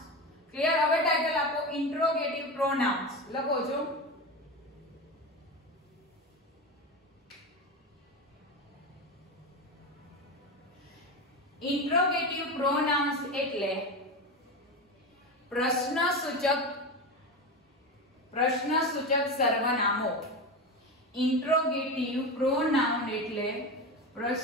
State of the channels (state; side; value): normal; both; correlation 0.21